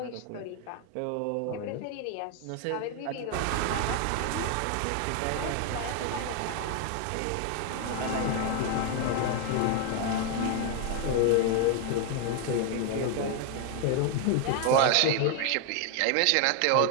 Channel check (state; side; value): different; both; correlation 0.00